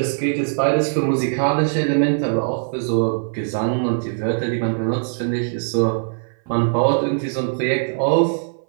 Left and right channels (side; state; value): left; silent; 57 dB below the other